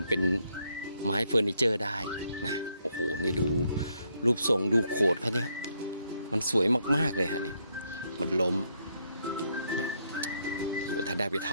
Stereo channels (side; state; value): both; inverted; correlation -0.75